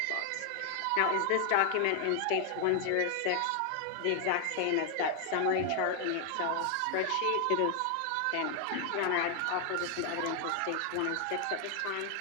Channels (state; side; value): different; both; correlation 0.00